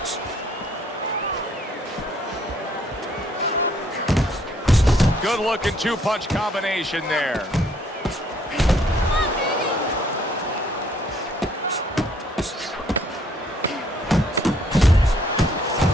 Good looking two-punch combination there.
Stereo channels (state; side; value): normal; both; correlation 0.64